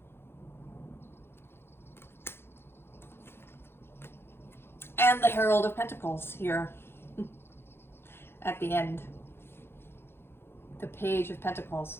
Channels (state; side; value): late; right; 0.11 ms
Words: And the Herald of Pentacles here at the end. The Page of